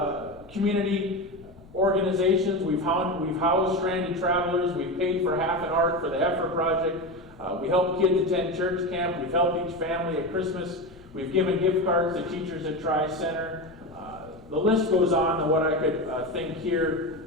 community organizations. We've housed stranded travelers. We've paid for half an ark for the Heifer Project. We help kids attend church camp. We've helped each family at Christmas. We've given gift cards to teachers at Tri-Center. The list goes on to what I could think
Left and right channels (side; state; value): left; noise; rumble, 23 dB below the sound